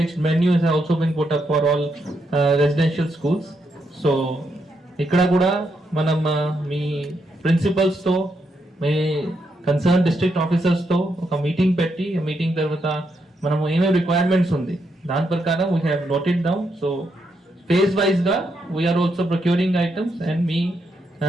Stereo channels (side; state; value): both; normal; correlation 0.80